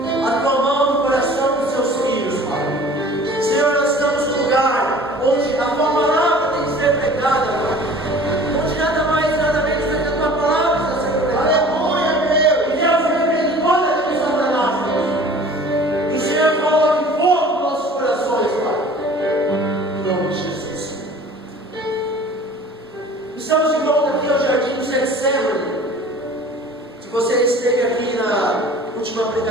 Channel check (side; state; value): both; normal; correlation 0.46